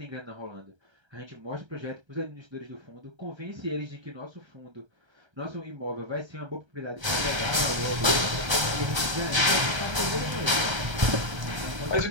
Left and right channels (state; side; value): late; left; 1.3 ms